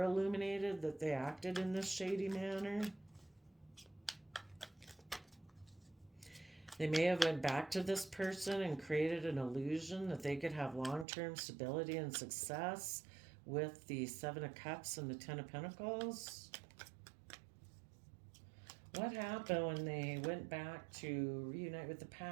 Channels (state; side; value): drops out; left; at 11.1 s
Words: illuminated that they acted in this shady manner. They may have went back to this person and created an illusion that they could have long-term stability and success with the Seven of Cups and the Ten of Pentacles. What happened when they went back to reunite with the